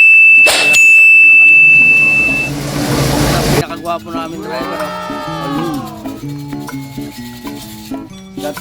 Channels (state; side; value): identical; both; correlation 1.00